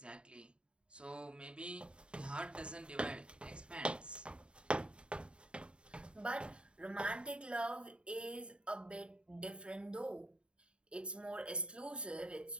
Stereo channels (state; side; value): late; left; 0.053 ms